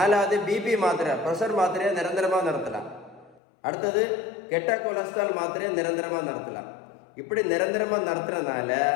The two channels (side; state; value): right; drops out; at 3.4 s